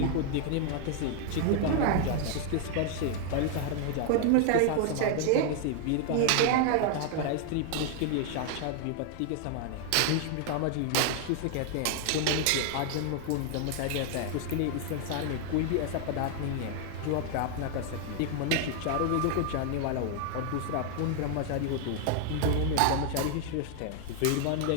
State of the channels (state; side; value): different; both; correlation 0.00